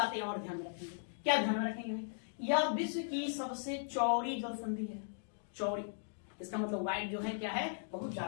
और ध्यान में रखेंगे, क्या ध्यान में रखेंगे, यह विश्व की सबसे चौड़ी जल संधि है, चौड़ी, इसका मतलब वाइड जो है क्या है, बहुत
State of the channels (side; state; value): right; silent; digital silence